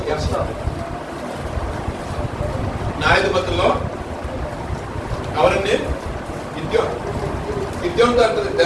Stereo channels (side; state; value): both; identical; correlation 1.00